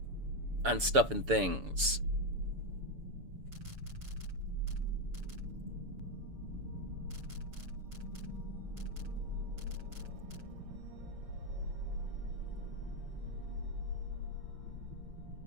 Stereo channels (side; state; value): left; late; 7.0 ms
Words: on stuff and things.